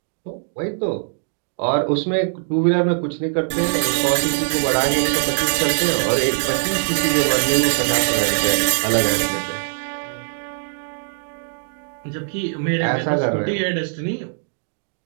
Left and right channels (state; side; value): silent; left; digital silence